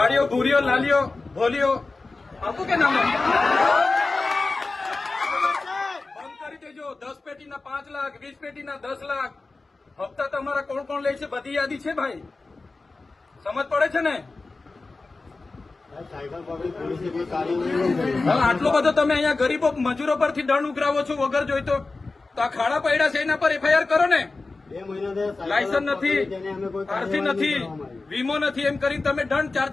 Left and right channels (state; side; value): quieter; right; 3.6 dB